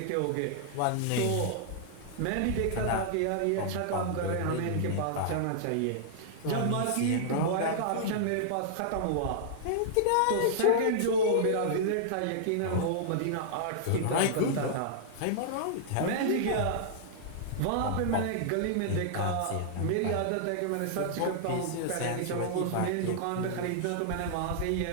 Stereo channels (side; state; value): both; different; correlation -0.01